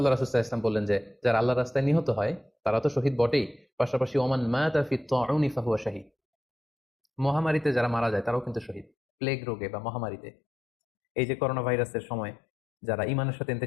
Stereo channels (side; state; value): right; drops out; at 8.9 s